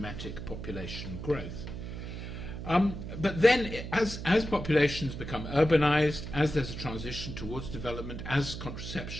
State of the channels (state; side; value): noise; right; hum, 8 dB below the sound